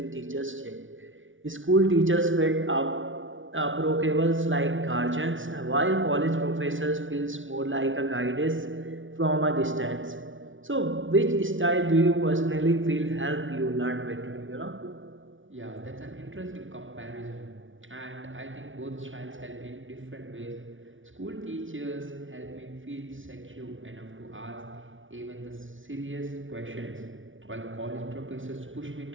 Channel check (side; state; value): left; late; 0.57 ms